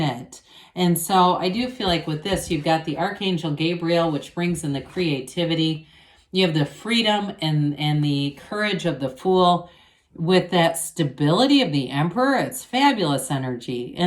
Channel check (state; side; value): identical; both; correlation 1.00